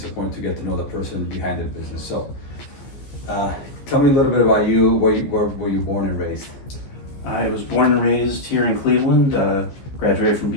important to get to know the person behind the business. So tell me a little bit about you. Where were you born and raised? I was born and raised here in Cleveland, graduated from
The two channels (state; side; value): late; right; 15 ms